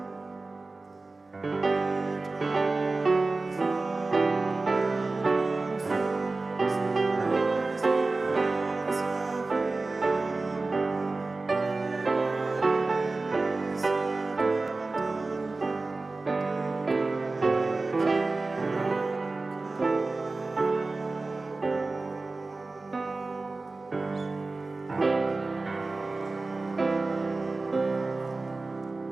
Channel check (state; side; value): quieter; left; 3.5 dB